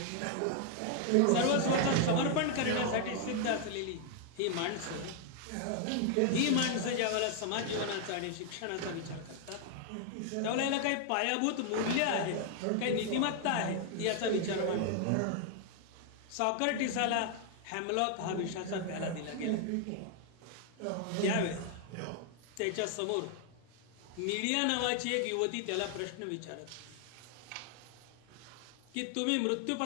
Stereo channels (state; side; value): different; both; correlation 0.00